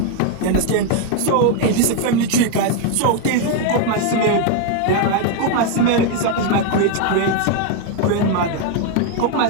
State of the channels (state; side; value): different; both; correlation 0.01